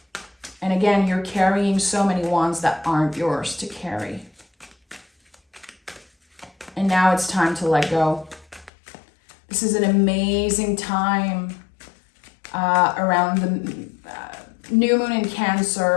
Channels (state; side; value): drops out; right; at 8.7 s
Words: And again, you're carrying so many wands that aren't yours to carry. And now it's time to let go. This is an amazing time around the new moon in